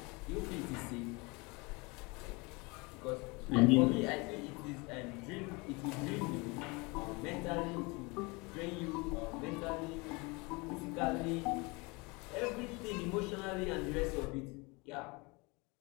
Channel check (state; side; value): quieter; right; 27.0 dB